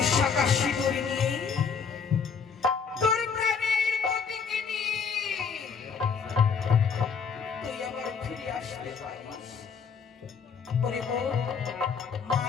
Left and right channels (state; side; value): quieter; right; 6.1 dB